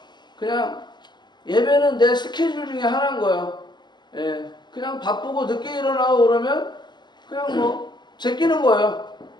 그냥 예배는 내 스케줄 중에 하나인 거예요. 예, 그냥 바쁘고 늦게 일어나고 그러면 그냥 뭐 제끼는 거예요.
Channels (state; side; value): late; right; 0.21 ms